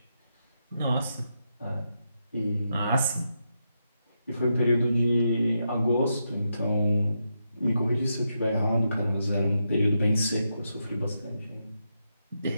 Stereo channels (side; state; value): both; inverted; correlation -0.84